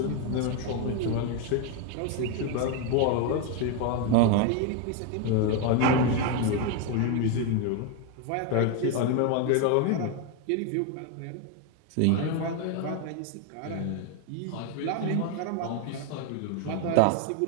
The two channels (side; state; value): both; different; correlation 0.02